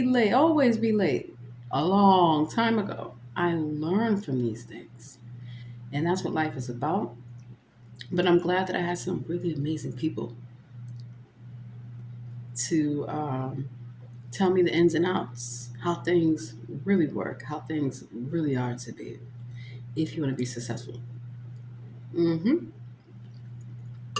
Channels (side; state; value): both; identical; correlation 1.00